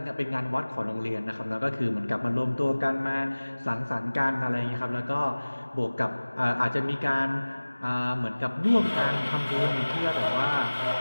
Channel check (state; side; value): inverted; both; correlation -1.00